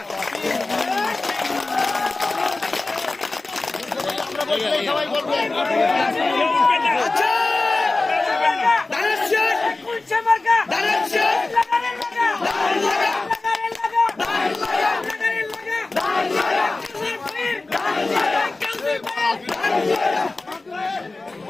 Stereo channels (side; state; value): right; quieter; 3.3 dB